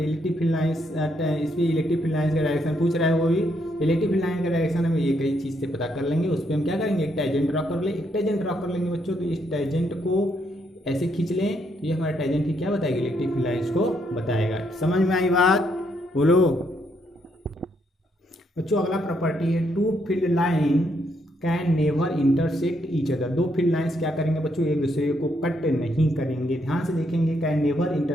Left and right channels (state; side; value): normal; both; correlation 0.75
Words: फील्ड लाइंस, इस पर इलेक्ट्रिक फील्ड लाइंस का डायरेक्शन पूछ रहा है, वो भी इलेक्ट्रिक फील्ड लाइन का डायरेक्शन हम ये कई चीज़ से पता कर लेंगे। उस पर हम क्या करेंगे, एक टेंजेंट ड्रा कर ले, एक टेंजेंट ड्रा कर लेंगे बच्चों। तो इस टेंजेंट को ऐसे खींच लें, तो ये हमारा टेंजेंट की क्या बताएगा, इलेक्ट्रिक फील्ड लाइंस को बताएगा। समझ में आई बात, बोलो बच्चों। अगला प्रॉपर्टी है, two field line can never intersect each other. दो फील्ड लाइंस क्या करेंगे बच्चों, एक दूसरे को कट नहीं करेंगे। ध्यान से देखेंगे, can never